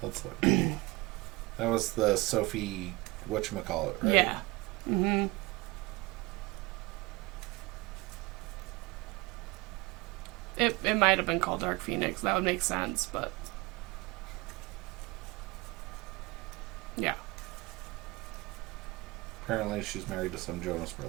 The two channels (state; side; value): quieter; left; 22.7 dB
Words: look. That was the Sophie whatchamacallit, right? Yeah. Mm-hmm. It might have been called Dark Phoenix. That would make sense, but... Yeah. Apparently she's married to some Jonas